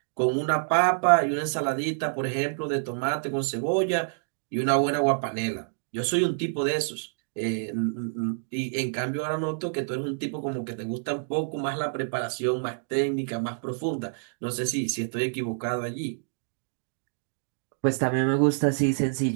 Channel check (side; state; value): left; silent; digital silence